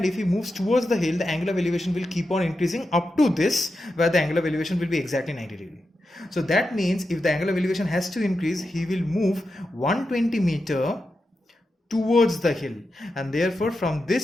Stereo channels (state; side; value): normal; both; correlation 0.89